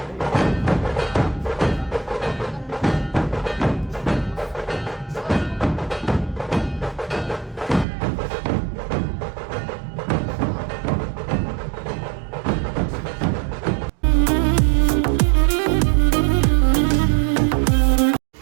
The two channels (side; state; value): left; drops out; at 7.9 s